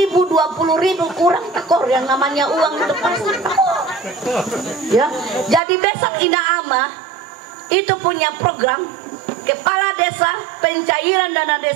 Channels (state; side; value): drops out; left; at 5.6 s